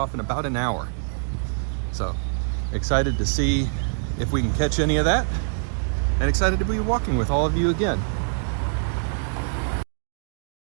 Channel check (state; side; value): silent; left; digital silence